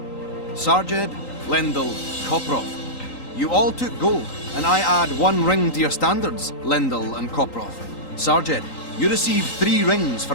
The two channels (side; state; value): right; late; 3.9 ms